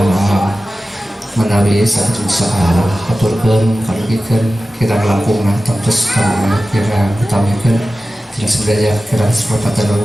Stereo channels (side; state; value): both; normal; correlation 0.95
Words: menawi saged salah aturkeun kalugikeun kirang langkungna tamtes kami kirang utamikeun tidak sebenarnya kirang sepatah